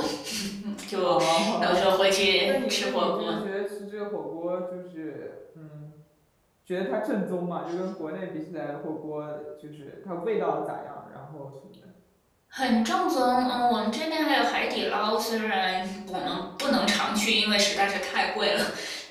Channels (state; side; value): identical; both; correlation 1.00